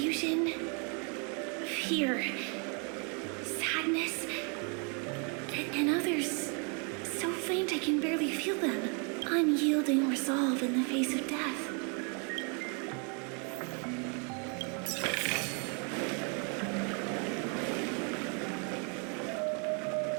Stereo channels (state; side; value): quieter; left; 37.4 dB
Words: fear, sadness, and others so faint I can barely feel them. Unyielding resolve in the face of death.